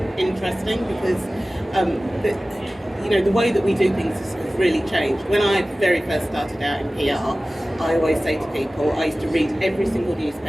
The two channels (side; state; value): both; normal; correlation 0.97